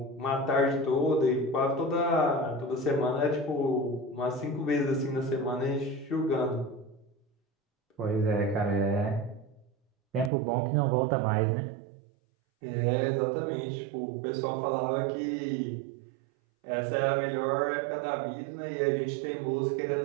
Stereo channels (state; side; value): drops out; left; at 10.3 s